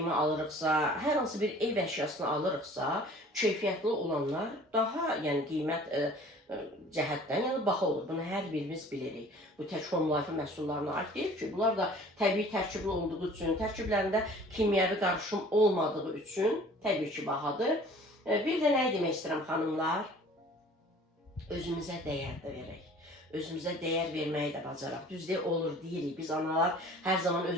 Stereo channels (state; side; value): normal; both; correlation 0.48